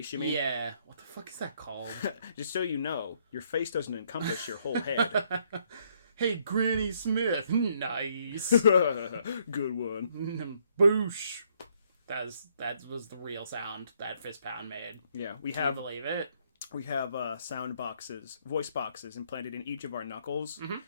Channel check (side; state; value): both; inverted; correlation -0.69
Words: you mean? Yeah. What the fuck is that called? Just so you know, your face doesn't encompass your whole head. Hey, Granny Smith. Nice. Good one. Boosh. That was the real sound that fist pound made. Yeah, Can you believe it? We have sound boxes, voice boxes implanted in each of our knuckles. Mm-hmm.